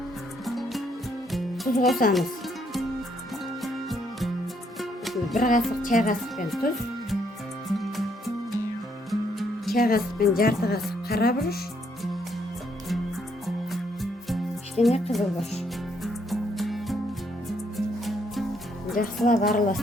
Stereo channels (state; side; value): normal; both; correlation 0.71